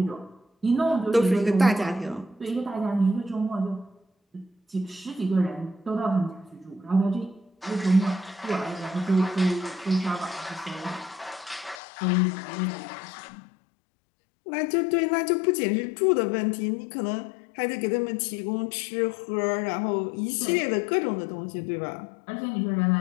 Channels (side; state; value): right; drops out; at 11.8 s